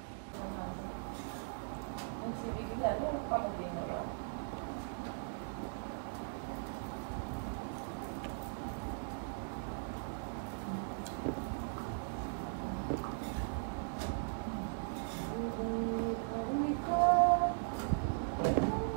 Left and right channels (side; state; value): left; silent; digital silence